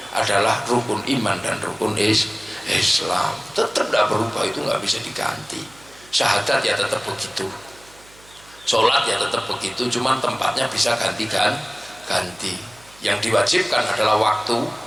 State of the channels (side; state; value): right; noise; hum, 26 dB below the sound